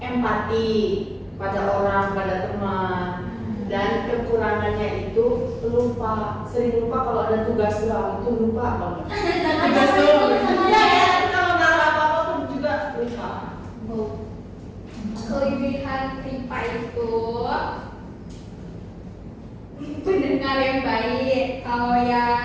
empati pada orang, pada teman. Dan kekurangannya itu sering lupa kalau ada tugas doang, itu lupa banget. Tugas doang. Ya, kalau naruh apa-apa pun juga lupa. Kelebihan Ripa itu pendengar yang baik. Kalau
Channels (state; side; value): identical; both; correlation 1.00